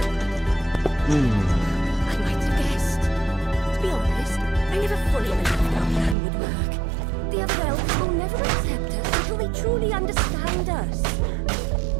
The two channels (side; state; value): left; drops out; at 6.2 s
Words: I might have guessed. To be honest, I never fully believed our plan would work. The other elves will never accept us until they truly understand us.